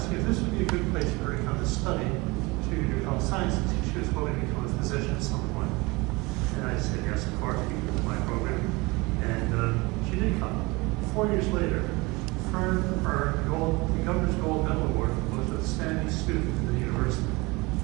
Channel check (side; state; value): left; quieter; 24.4 dB